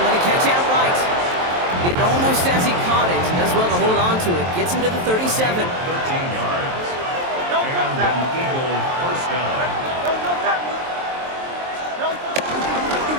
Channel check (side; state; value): left; late; 23 ms